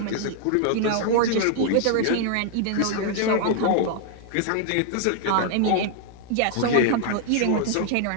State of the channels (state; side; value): different; both; correlation 0.00